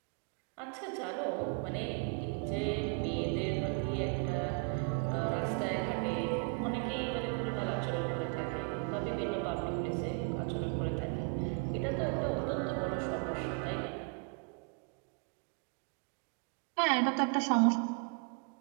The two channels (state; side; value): quieter; left; 37.5 dB